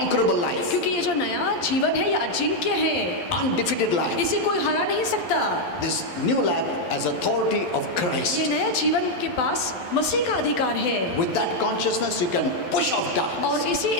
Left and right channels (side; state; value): right; late; 12 ms